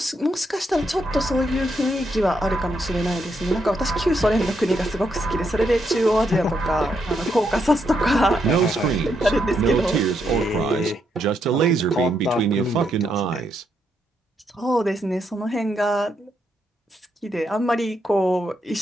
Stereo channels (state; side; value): normal; both; correlation 0.79